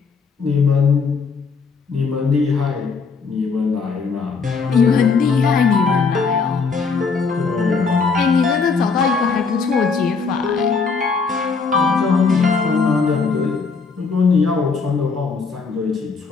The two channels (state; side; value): quieter; right; 4.9 dB